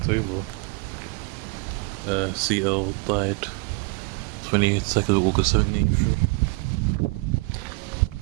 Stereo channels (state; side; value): quieter; left; 29.0 dB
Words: over. CL died 22nd of August 1783.